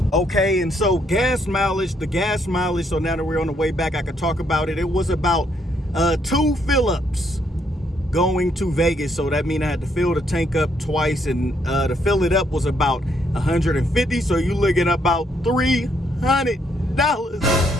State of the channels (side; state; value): both; normal; correlation 0.72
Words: Okay, and so gas mileage, so now that we're on the way back, I could talk about it. It was about 2 fill-ups going to Vegas. So that means I had to fill the tank up twice, and to fill it up was about $150. So you're looking at about $300.